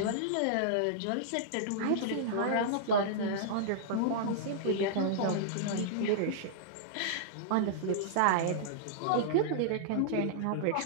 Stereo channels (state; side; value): different; both; correlation -0.02